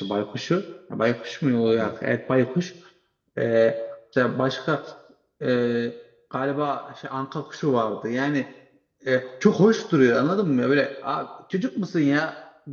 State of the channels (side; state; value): both; identical; correlation 1.00